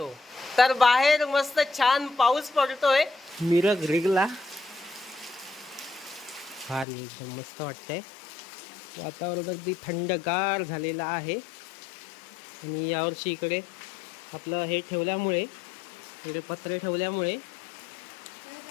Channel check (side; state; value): right; drops out; at 6.9 s